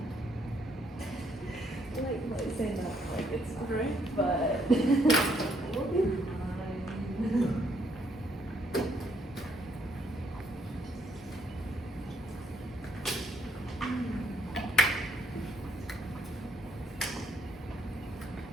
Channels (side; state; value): both; normal; correlation 0.71